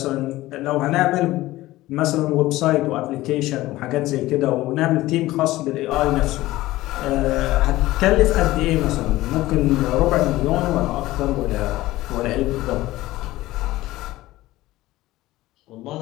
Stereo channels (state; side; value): quieter; right; 17.2 dB